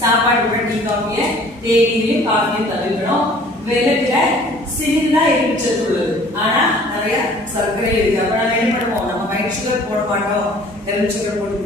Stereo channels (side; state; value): both; normal; correlation 0.52